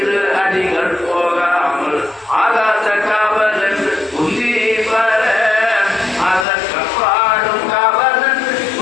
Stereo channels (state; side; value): drops out; right; at 6.5 s